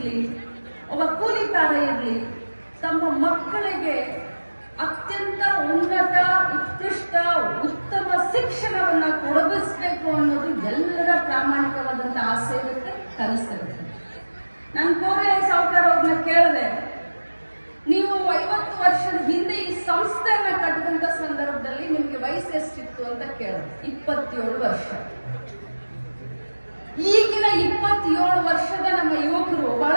ಒಬ್ಬ ಕೂಲಿಕಾರ ಇರ್ಲಿ, ತಮ್ಮ ಮಕ್ಕಳಿಗೆ ಅತ್ಯಂತ ಉನ್ನತ, ಉತ್ಕೃಷ್ಟ, ಉತ್ತಮ ಶಿಕ್ಷಣವನ್ನ ಕೊಡಗಿಸ್ಬೇಕು ಅನ್ನೋದು ಎಲ್ಲರ ಪ್ರಾಮಾಣಿಕವಾದಂತಹ ಆಸೆ ಇರುತ್ತೆ, ಕನಸಿರುತ್ತೆ. ನಾನು ಕೋರೆ ಸಾವುಕಾರ ಅವ್ರನ್ನ ಕೇಳಿದೆ, ನೀವು 50 ವರ್ಷದ ಹಿಂದೆ ಈ ಸಂಸ್ಥೆಯನ್ನ ಕಟ್ಟಿದಂತ ಸಂದರ್ಭದಲ್ಲಿ ನಿಮ್ಗೆ ವಯಸ್ಸು ಎಷ್ಟಿತ್ತು ಅಂತ ಕೇಳಿದೆ. 27 ವರ್ಷ. ಈಗಿನ 27 ವರ್ಷದ ನಮ್ಮ ಯುವಕರು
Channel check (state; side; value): inverted; both; correlation -1.00